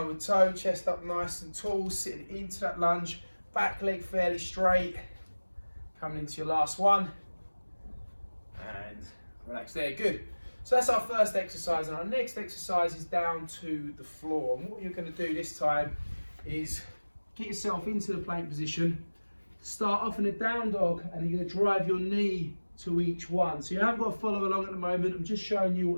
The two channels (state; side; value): inverted; both; correlation -1.00